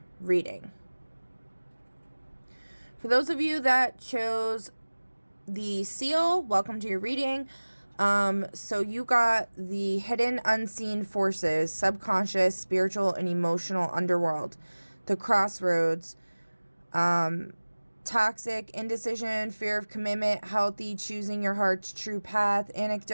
reading. For those of you that chose the seal, welcome to your reading. So you got the hidden unseen forces, subconscious, spiritual, and emotional underworld, the crossroads, toxic, indecision, fear of commitment, healthy, choosing your heart's true path,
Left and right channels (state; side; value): inverted; both; correlation -1.00